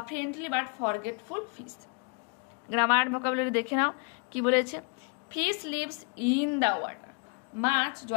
friendly but forgetful fish. Grammar vocabulary দেখে নাও কি বলেছে। Fish lives in the water, মাছ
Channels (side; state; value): right; quieter; 37.6 dB